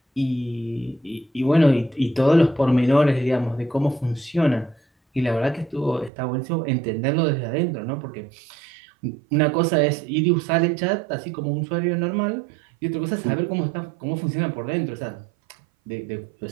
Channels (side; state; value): left; drops out; at 6.1 s